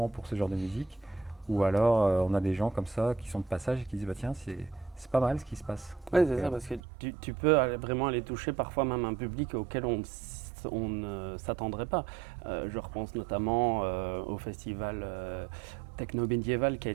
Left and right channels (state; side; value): drops out; left; at 6.8 s